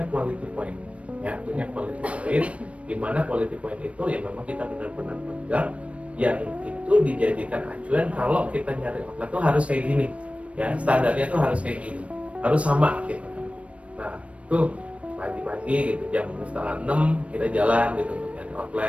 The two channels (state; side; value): late; left; 0.063 ms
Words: quality point. Ya punya quality point. Di mana quality point itu ya memang kita benar-benar pegang. Yang itu dijadikan acuan kalau kita nyari outlet tuh harus kayak gini. Ya standarnya tuh harus kayak gini. Harus sama gitu. Nah tuh pagi-pagi gitu jam 5:30 kita jalan gitu nyari